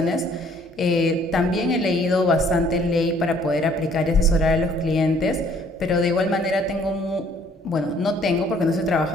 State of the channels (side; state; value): both; normal; correlation 0.60